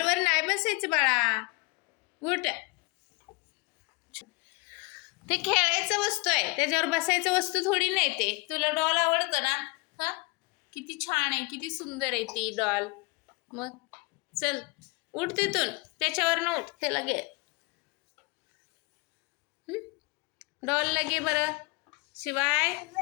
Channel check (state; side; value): quieter; right; 27.9 dB